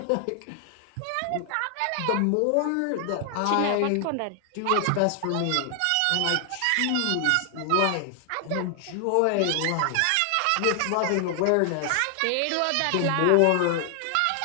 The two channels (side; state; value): both; different; correlation 0.00